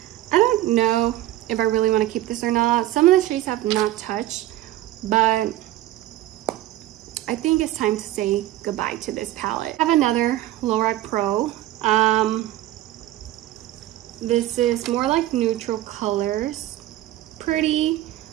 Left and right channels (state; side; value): quieter; left; 14.7 dB